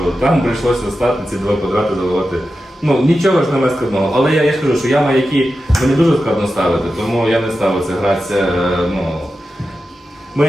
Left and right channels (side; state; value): both; normal; correlation 0.91